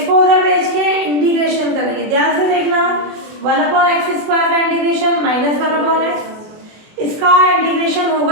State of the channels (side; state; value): left; late; 24 ms